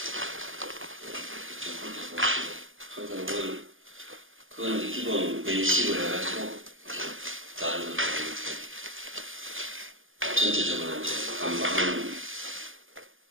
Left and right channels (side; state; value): left; late; 0.58 ms